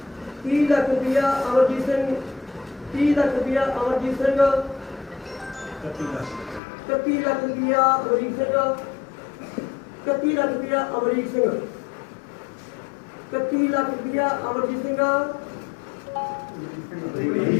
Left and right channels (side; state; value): right; drops out; at 6.6 s